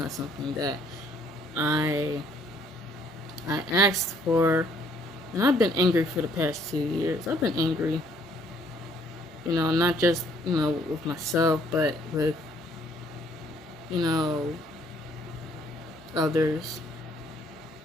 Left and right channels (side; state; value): both; normal; correlation 0.64